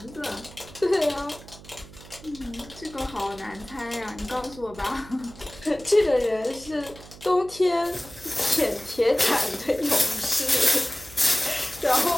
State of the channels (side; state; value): right; noise; hum, 19 dB below the sound